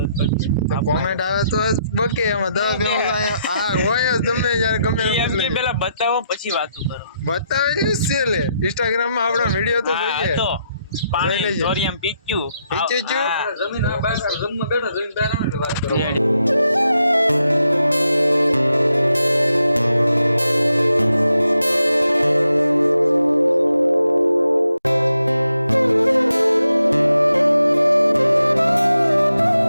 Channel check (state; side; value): inverted; both; correlation -0.81